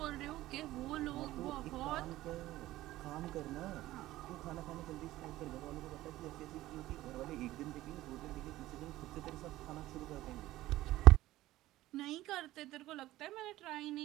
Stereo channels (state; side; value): quieter; left; 16.0 dB